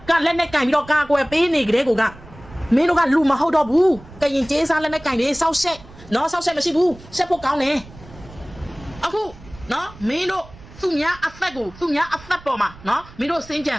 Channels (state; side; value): noise; right; rumble, 20 dB below the sound